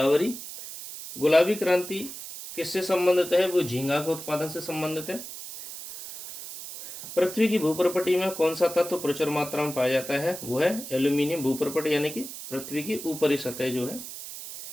गुलाबी क्रांति किससे संबंधित है? वो झींगा के उत्पादन से संबंधित है। पृथ्वी की भूप्रपटी में कौन सा तत्व प्रचुर मात्रा में पाया जाता है? वो है एल्यूमिनियम। भूप्रपटी यानी कि पृथ्वी की ऊपरी सतह जो है।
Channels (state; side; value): noise; right; hiss, 11 dB below the sound